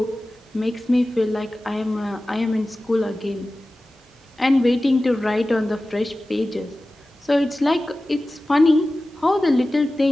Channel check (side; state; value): both; normal; correlation 0.96